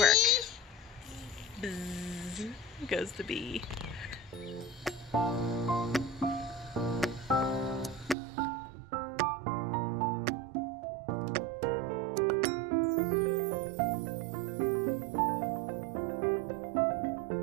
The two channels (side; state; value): left; drops out; at 8.2 s